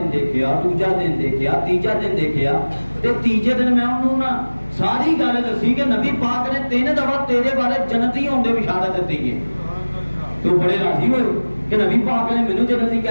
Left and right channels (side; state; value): both; inverted; correlation -1.00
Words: دیکھیا, دوجا دن دیکھیا, تیجا دن دیکھیا, تے تیجے دن میں انہوں نا ساری گل دسی کہ نبی پاک نے 3 دفعہ تیرے بارے جنتی ہونے کی بشارت دیتی ہے. تو بڑے راضی ہوئے کہ نبی پاک نے مینوں جنتی